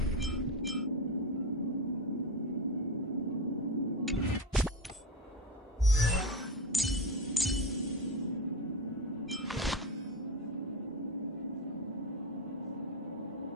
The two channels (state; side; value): normal; both; correlation 0.18